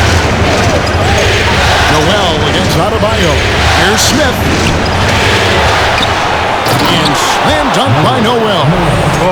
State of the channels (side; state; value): both; identical; correlation 1.00